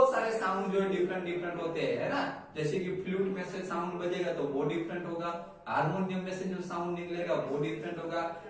सारे साउंड जो है डिफरेंट डिफरेंट होते हैं, है ना। जैसे कि फ्लूट में से साउंड बजेगा तो वो डिफरेंट होगा, हारमोनियम में से जो साउंड निकलेगा वो डिफरेंट होगा,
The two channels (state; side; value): identical; both; correlation 1.00